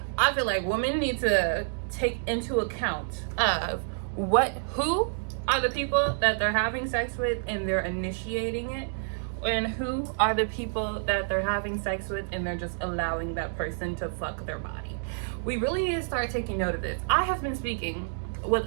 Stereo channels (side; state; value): left; silent; digital silence